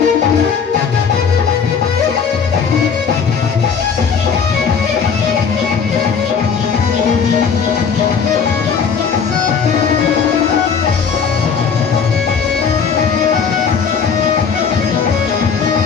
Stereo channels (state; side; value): quieter; right; 6.3 dB